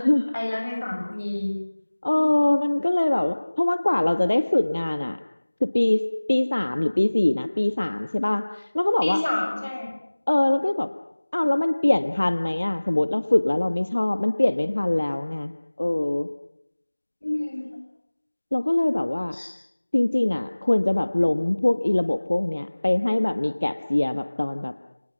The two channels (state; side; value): inverted; both; correlation -1.00